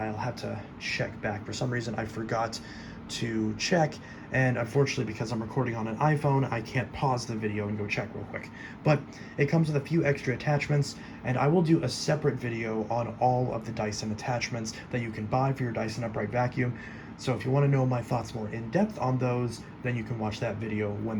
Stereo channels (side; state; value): both; identical; correlation 1.00